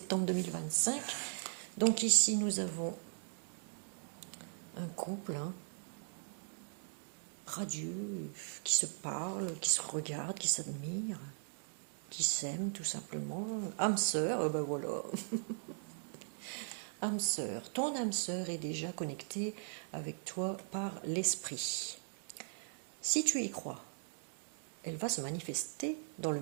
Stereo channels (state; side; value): silent; left; digital silence